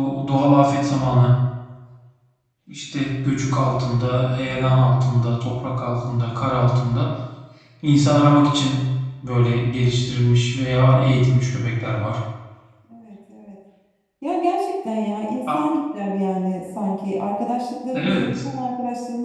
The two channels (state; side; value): identical; both; correlation 1.00